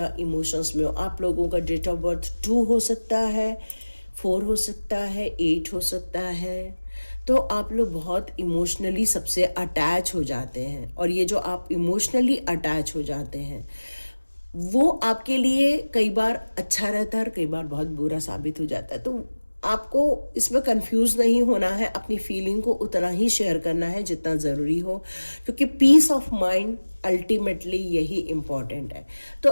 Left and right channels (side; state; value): both; inverted; correlation -1.00